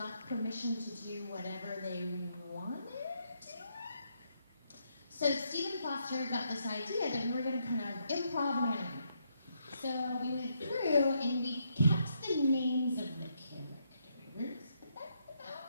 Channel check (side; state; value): both; inverted; correlation -0.77